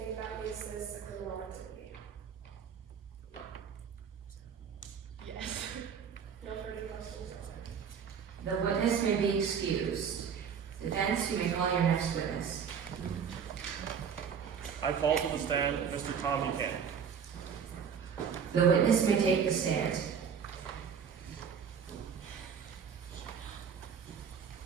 that makes this a criminal activity? Yes. No further questions, Your Honor. The witness may be excused. Defense, you may call your next witness. I call to the stand Mr. Tom Buchanan. The witness may take the stand.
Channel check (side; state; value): left; quieter; 7.1 dB